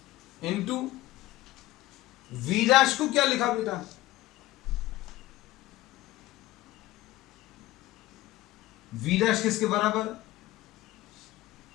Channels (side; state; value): right; quieter; 17.1 dB